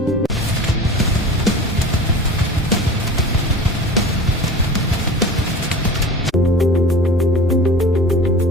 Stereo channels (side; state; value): both; normal; correlation 0.36